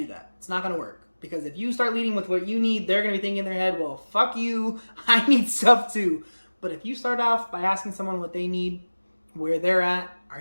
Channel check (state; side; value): inverted; both; correlation -1.00